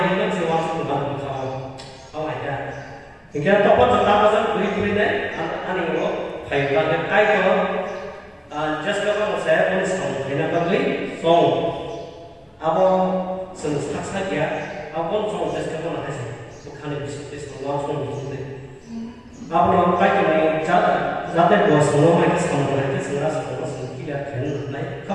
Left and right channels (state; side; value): identical; both; correlation 1.00